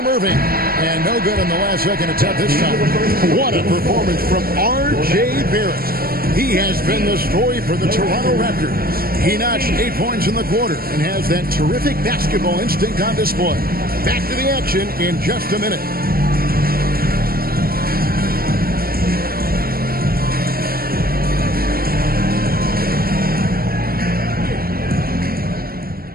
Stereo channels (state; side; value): late; left; 0.43 ms